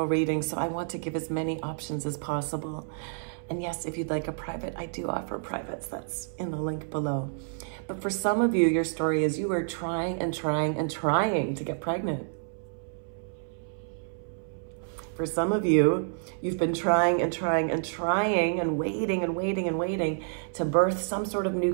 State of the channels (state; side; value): silent; left; 59 dB below the other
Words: reading, so I want to give as many options as possible. And yes, if you'd like a private, I do offer privates. That's in the link below. But for some of you, your story is you are trying and trying and trying to get pregnant. For some of you, you've been trying and trying and trying and waiting and waiting and waiting to birth some sort of new